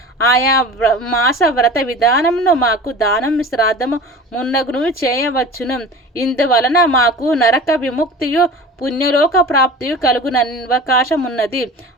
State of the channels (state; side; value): normal; both; correlation 0.38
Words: ఆయా మాస వ్రత విధానమును మాకు దానం శ్రాద్ధము మున్నగును చేయవచ్చును. ఇందువలన మాకు నరక విముక్తియు పుణ్యలోక ప్రాప్తియు కలుగున అవకాశం ఉన్నది.